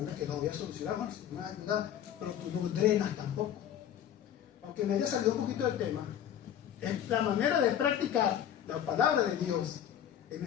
que no voy a solucionar, bueno, si me va a ayudar, pero tú no drenas tampoco. Aunque me haya salido un poquito del tema, es la manera de practicar la palabra de Dios en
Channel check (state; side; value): quieter; right; 10.0 dB